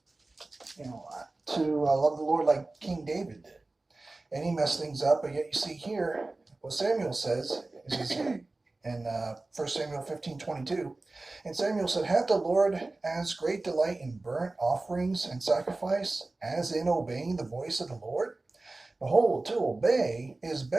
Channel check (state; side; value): quieter; left; 3.1 dB